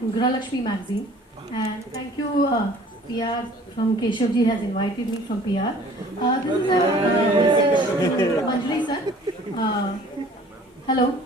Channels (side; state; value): both; normal; correlation 0.51